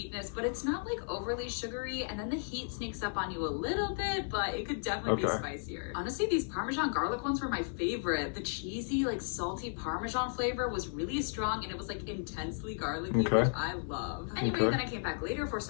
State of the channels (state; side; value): silent; right; digital silence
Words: but it's not like overly sugary, and then the heat sneaks up on you a little bit, but it could definitely be Okay. spicier. Honestly, these Parmesan garlic ones were my favorite. The cheesy, like salty Parmesan flavor was really strong, and it was like intensely garlicky, Okay. which I love. Anyway, Okay. then I came back later for